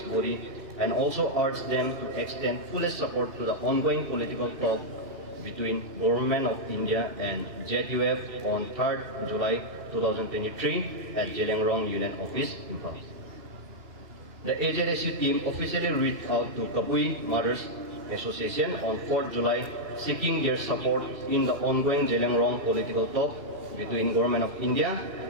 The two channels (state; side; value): late; left; 2.7 ms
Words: body, and also urged them to extend fullest support to the ongoing political talk between Government of India and ZUF on 3rd July 2023 at Zeliangrong Union Office, Impal. The AZSU team officially reached out to Kabui Mothers Association on 4th July, seeking their support in the ongoing Zeliangrong political talk between Government of India